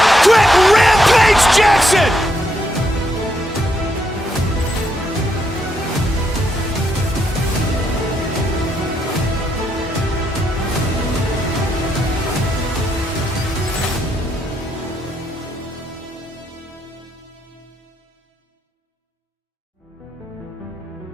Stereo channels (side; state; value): both; normal; correlation 0.77